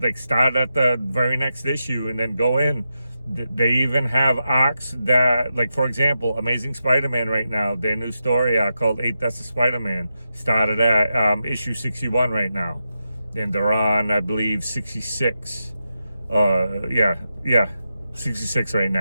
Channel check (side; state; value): both; inverted; correlation -0.88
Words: start at the very next issue and then go in. They even have arcs that, like, for example, Amazing Spider-Man right now, their new story arc called 8 Deaths of Spider-Man started at issue 61 right now, and they're on, I believe, 66. Yeah, 66 right